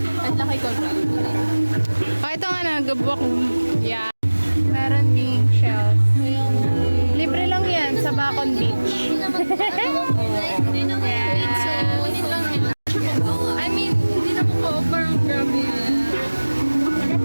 At laki ko. Oh, ito nga na, gabok. Yeah. Meron ding shells. Libre lang yan sa Bacon Beach. I mean, hindi na po pa-offer. Grabe yan.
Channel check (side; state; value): both; inverted; correlation -1.00